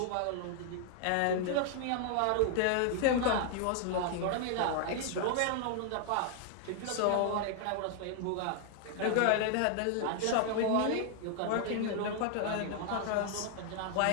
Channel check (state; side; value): different; both; correlation 0.00